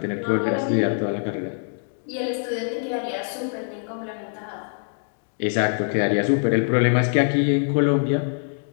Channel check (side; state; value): right; silent; digital silence